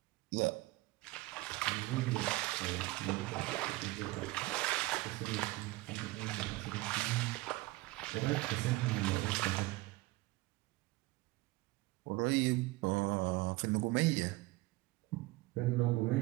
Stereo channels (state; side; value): quieter; left; 20.4 dB